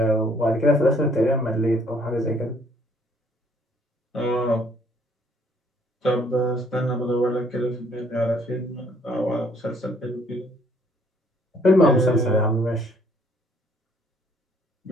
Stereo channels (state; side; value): normal; both; correlation 0.63